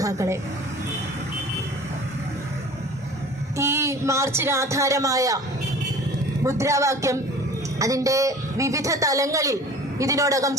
ഈ മാർച്ചിന് ആധാരമായ മുദ്രാവാക്യം അതിൻ്റെ വിവിധ തലങ്ങളിൽ ഇതിനോടകം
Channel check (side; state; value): both; normal; correlation 0.44